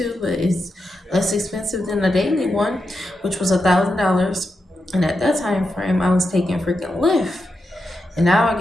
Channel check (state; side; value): normal; both; correlation 0.87